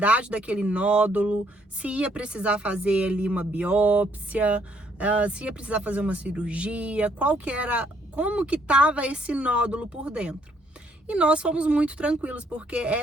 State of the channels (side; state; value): both; normal; correlation 0.68